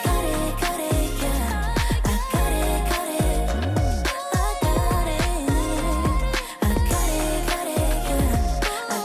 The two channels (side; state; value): both; identical; correlation 1.00